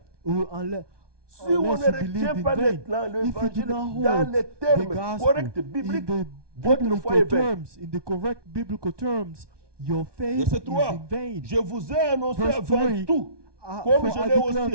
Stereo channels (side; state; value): left; late; 1.2 ms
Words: unless Si on ne unless you believe retient in pas vain, l'évangile if you do not hold dans les the termes gospel corrects in bibliques, the votre foi est biblical vaine. terms, in the correct biblical terms, your faith Verset is 3. in vain. Je vous ai annoncé Verse avant 3, tout, For comme je I l'ai declare